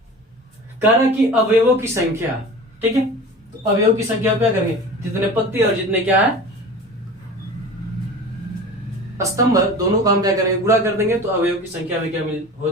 कह रहा है कि अवयवों की संख्या। ठीक है, तो अवयव की संख्या क्या करेंगे, जितने पंक्ति और जितने क्या है स्तंभ, दोनों का हम क्या करेंगे, गुणा कर देंगे तो अवयव की संख्या में क्या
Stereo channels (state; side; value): normal; both; correlation 0.36